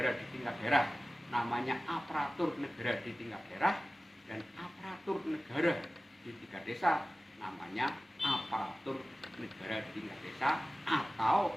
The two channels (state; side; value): normal; both; correlation 0.96